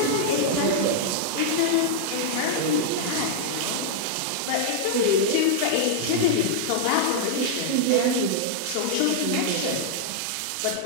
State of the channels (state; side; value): different; both; correlation -0.01